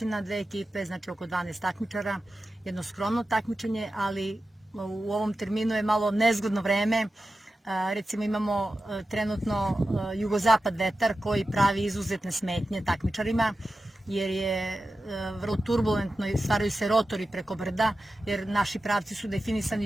dve ekipe, znači oko 12 takmičara, jedno skromno takmičenje, ali u ovom terminu je malo nezgodno vreme. Recimo imamo trenutno jugozapad vetar koji pravi izuzetne smetnje takmičarima, jer je vrlo turbulentno i stvaraju se rotori preko brda, jer naši pravci su definisani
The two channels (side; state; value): both; normal; correlation 0.93